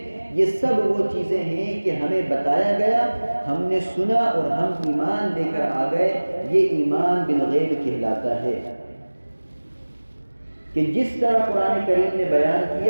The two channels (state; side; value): inverted; both; correlation -1.00